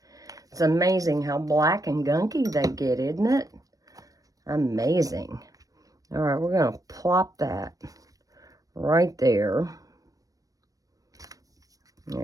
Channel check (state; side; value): late; left; 0.17 ms